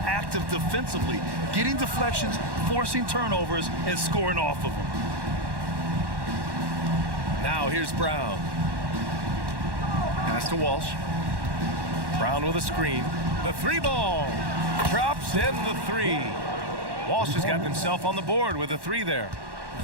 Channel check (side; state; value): left; late; 1.1 ms